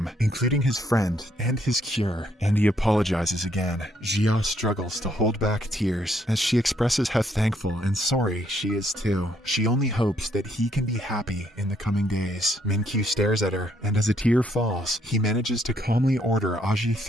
including his friend and his cure, and he apologizes again. Jia struggles to hold back tears as she expresses how thankful and sorry she is too. She only hopes that he can be happy in the coming days. Min-kyu stares at her, and as a tear falls, he manages to calmly order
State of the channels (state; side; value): normal; both; correlation 0.70